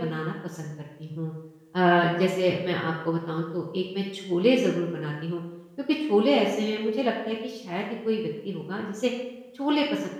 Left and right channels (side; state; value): both; identical; correlation 1.00